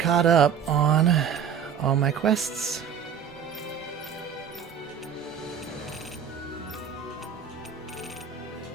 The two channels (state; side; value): quieter; left; 7.8 dB